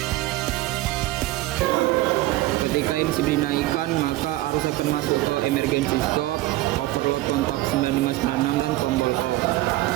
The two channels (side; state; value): left; quieter; 17.4 dB